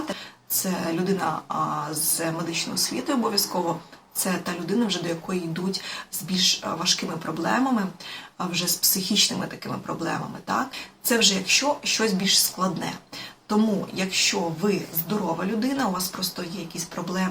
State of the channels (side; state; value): both; identical; correlation 1.00